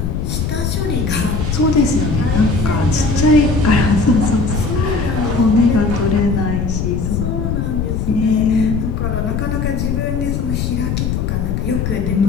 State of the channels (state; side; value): noise; left; rumble, 1 dB below the sound